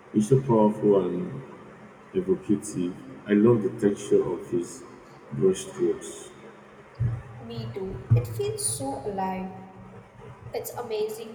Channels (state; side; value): identical; both; correlation 1.00